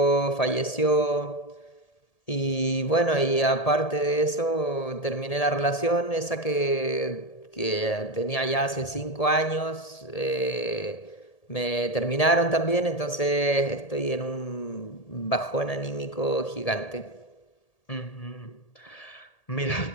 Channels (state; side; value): late; right; 1.8 ms